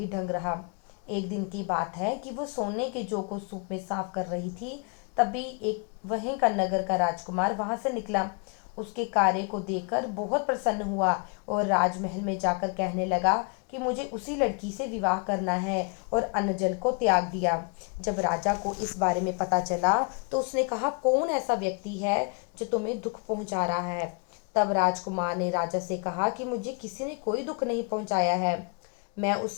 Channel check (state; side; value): quieter; right; 36.3 dB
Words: ढंग रहा। एक दिन की बात है कि वो सोने के जौ को सूप में साफ कर रही थी, तभी एक वहीं का नगर का राजकुमार वहां से निकला। उसके कार्य को देखकर बहुत प्रसन्न हुआ और राजमहल में जाकर कहने लगा कि मुझे उसी लड़की से विवाह करना है और अन्न जल को त्याग दिया। जब राजा को इस बारे में पता चला तो उसने कहा, कौन ऐसा व्यक्ति है जो तुम्हें दुख पहुंचा रहा है। तब राजकुमार ने राजा से कहा कि मुझे किसी ने कोई दुख नहीं पहुंचाया है, मैं उस